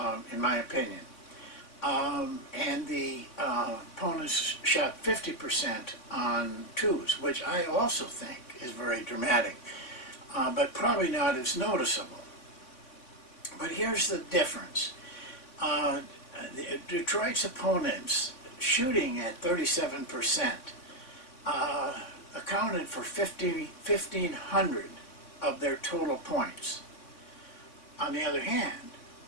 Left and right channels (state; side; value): late; right; 3.6 ms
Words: in my opinion. And the opponents shot 50% on 2s, which I also think is very dramatic, but probably not as noticeable. But here's the difference. Detroit's opponents shooting at 37% accounted for 1,500 of their total points. On the other hand,